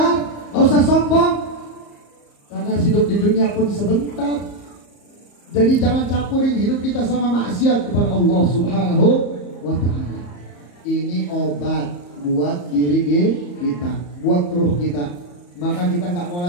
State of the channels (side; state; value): right; late; 34 ms